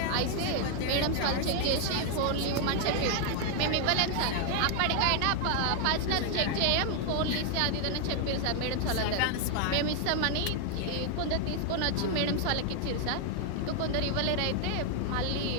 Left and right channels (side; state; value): both; different; correlation 0.00